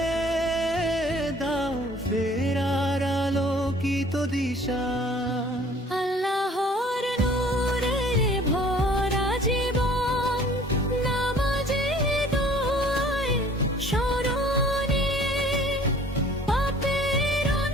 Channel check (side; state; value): both; normal; correlation 0.52